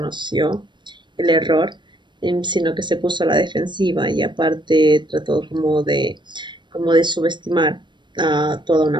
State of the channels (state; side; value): late; left; 0.22 ms